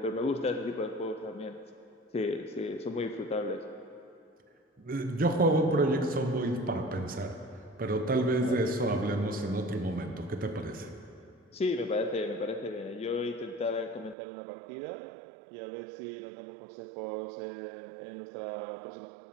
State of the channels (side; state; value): left; drops out; at 14.2 s